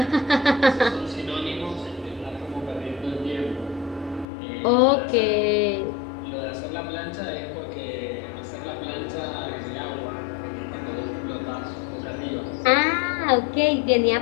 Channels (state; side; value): drops out; right; at 4.2 s